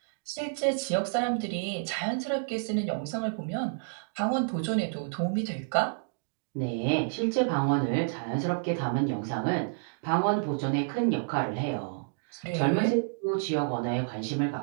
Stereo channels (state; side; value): silent; left; digital silence